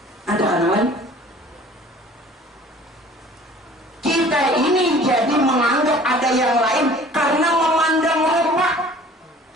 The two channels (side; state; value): both; normal; correlation 0.49